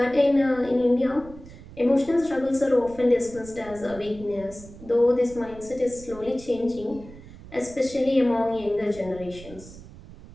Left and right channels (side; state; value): right; noise; rumble, 18 dB below the sound